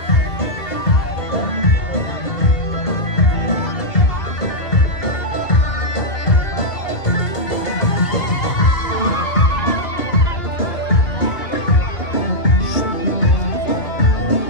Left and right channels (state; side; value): late; right; 2.6 ms